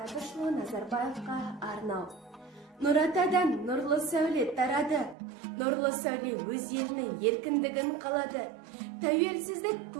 Әбішұлы Назарбаевқа арнау. Нұратадан нұрлы сәуле тарады, нұрлы сәуле өз елінің еркіндігін қалады. Тәуелсіздік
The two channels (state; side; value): drops out; left; at 5.2 s